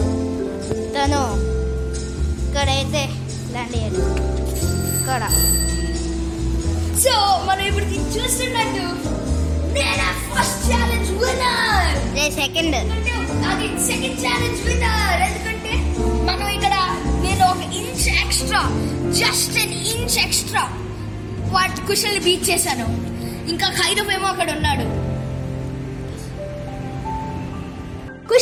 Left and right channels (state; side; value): identical; both; correlation 1.00